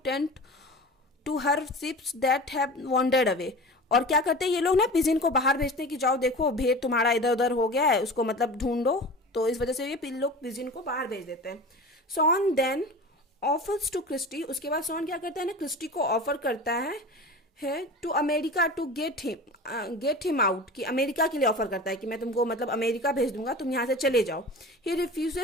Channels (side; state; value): both; normal; correlation 0.34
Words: to her sheeps that have wandered away, और क्या करते हैं ये लोग ना, पिजिन को बाहर भेजते हैं कि जाओ देखो भेड़ तुम्हारा इधर उधर हो गया है, उसको मतलब ढूंढो, तो इस वजह से ये लोग पिजिन को बाहर भेज देते हैं। Shawn then offers to Christy, उसके बाद सॉन क्या करता है ना, क्रिस्टी को ऑफर करता है to America to get him out, कि अमेरिका के लिए ऑफर करता है कि मैं तुमको मतलब अमेरिका भेज दूंगा, तुम यहाँ से चले जाओ। ही